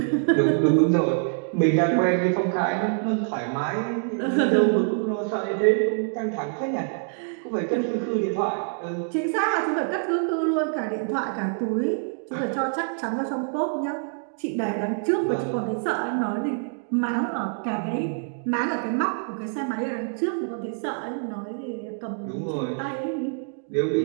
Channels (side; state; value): left; silent; 61 dB below the other